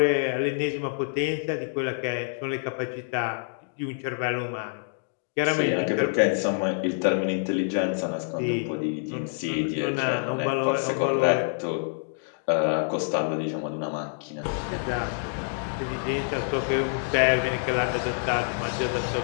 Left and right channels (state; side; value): silent; right; digital silence